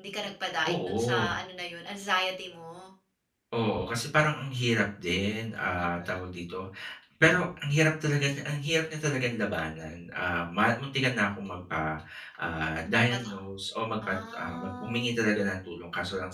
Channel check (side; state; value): both; identical; correlation 1.00